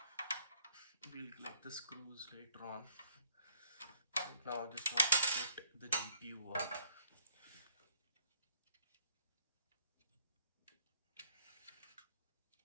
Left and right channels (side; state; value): both; inverted; correlation -0.63